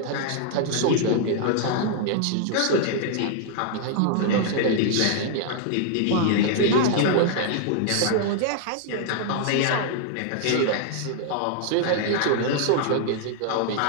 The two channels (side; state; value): both; different; correlation 0.00